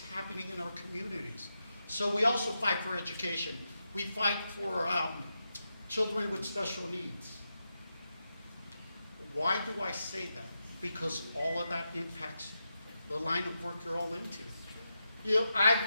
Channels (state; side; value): inverted; both; correlation -0.88